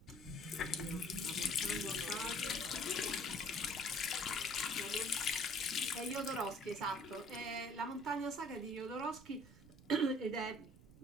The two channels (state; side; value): noise; right; rumble, 20 dB below the sound